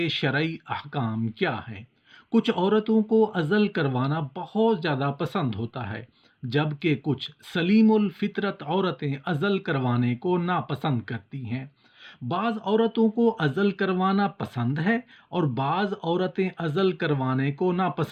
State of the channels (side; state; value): both; identical; correlation 1.00